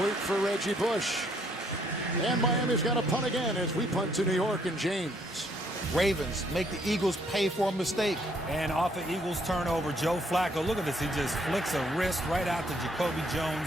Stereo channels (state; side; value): normal; both; correlation 0.68